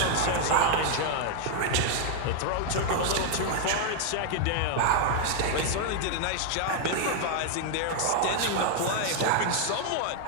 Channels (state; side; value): different; both; correlation 0.00